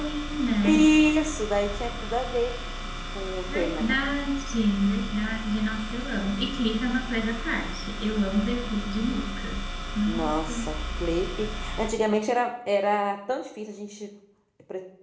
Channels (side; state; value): both; identical; correlation 1.00